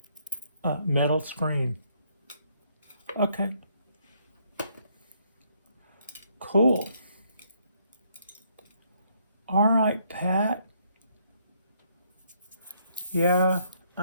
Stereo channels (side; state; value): both; inverted; correlation -0.70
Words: metal screen. Okay. Cool. All right, Pat. Yeah,